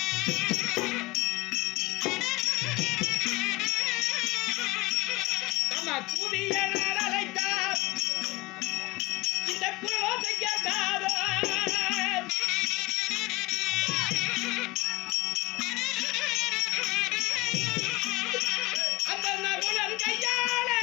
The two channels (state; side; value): quieter; right; 21.8 dB